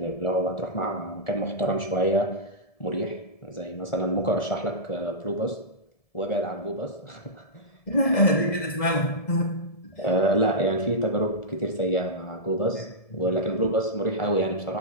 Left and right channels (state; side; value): late; right; 1.7 ms